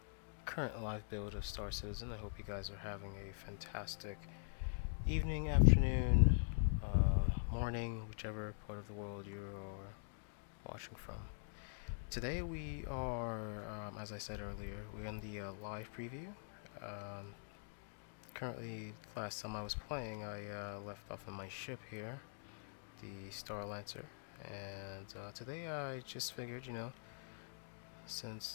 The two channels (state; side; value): silent; right; digital silence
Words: current live build of Star Citizen. I hope you guys are having a fantastic evening, afternoon, morning, whichever part of the world you're watching from. Today we are, as I said earlier, we're in the live preview. Currently, last time I was playing, I left off on my ship here, the Star Lancer, and today I just figured,